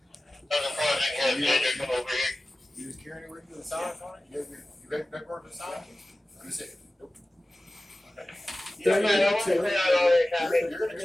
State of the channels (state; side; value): normal; both; correlation 0.96